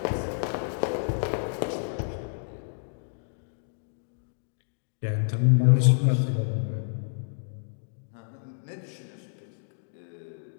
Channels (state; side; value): silent; right; digital silence